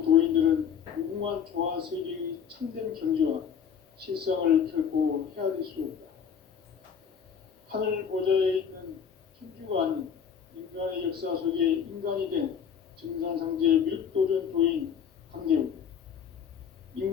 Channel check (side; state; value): right; quieter; 7.5 dB